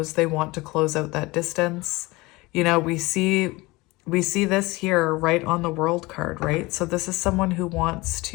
they want to close out that distance. We see this here right on the World card, right? So this is someone who wants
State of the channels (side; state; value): right; quieter; 22.3 dB